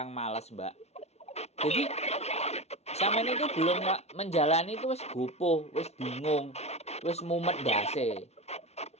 malas, Mbak. Jadi sampean itu belum menjalani itu wis gopoh, wis bingung, wis mumet dase.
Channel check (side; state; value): right; late; 0.31 ms